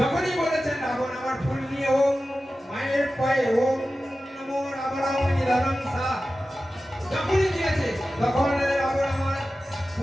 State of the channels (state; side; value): normal; both; correlation 0.94